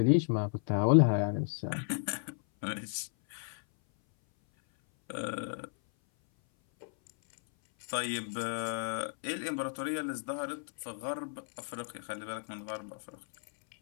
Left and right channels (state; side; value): silent; right; 55 dB below the other